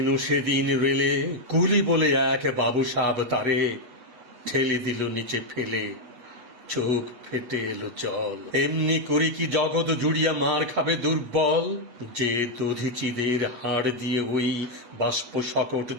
সেদিন রেলে কুলি বলে এক বাবু সাব তারে ঠেলে দিল নিচে ফেলে, চোখ ফেটে এলো জল। এমনি করি কি জগৎ জুড়িয়া মার খাবে দুর্বল, যে দধিচিদের হাড় দিয়ে ওই বাষ্প সকট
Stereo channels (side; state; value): left; late; 8.3 ms